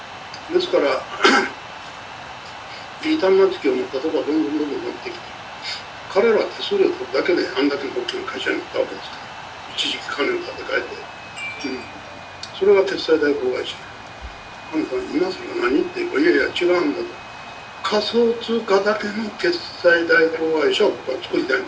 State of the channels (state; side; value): identical; both; correlation 1.00